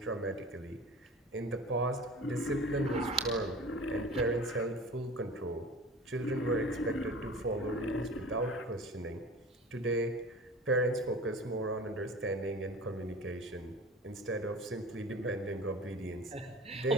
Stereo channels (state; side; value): normal; both; correlation 0.39